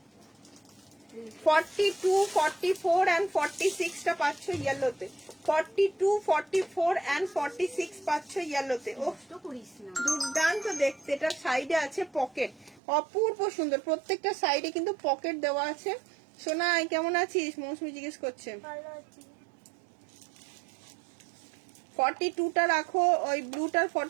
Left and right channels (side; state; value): left; drops out; at 12.8 s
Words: 42 44 and 46 টা পাচ্ছ ইয়েলোতে। 42 44 and 46 পাচ্ছ ইয়েলোতে। ও দুর্দান্ত দেখতে। এটা সাইডে আছে পকেট, অপূর্ব সুন্দর। প্রত্যেকটা সাইডে কিন্তু পকেট দেওয়া আছে। সোনা কেমন আছিস? মৌসুমি জিজ্ঞেস করছে। 42টা রাখো, ওই ব্লুটার